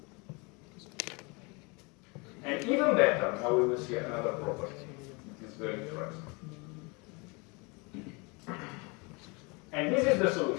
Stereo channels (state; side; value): quieter; right; 29.1 dB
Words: And even better, now we will see another property. It is very interesting. And this is the